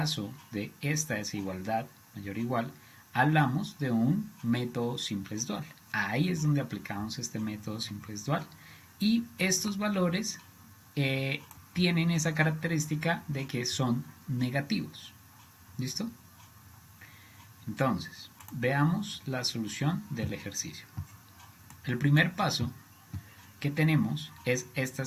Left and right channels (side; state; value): both; identical; correlation 1.00